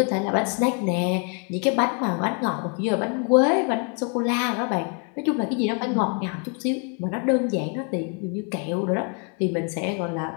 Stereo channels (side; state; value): right; quieter; 36.5 dB